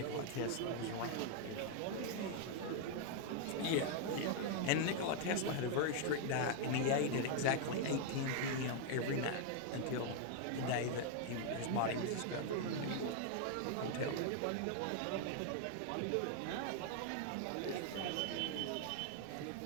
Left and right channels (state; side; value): different; both; correlation 0.00